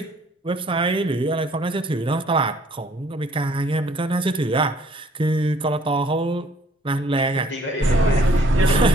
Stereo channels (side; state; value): both; normal; correlation 0.60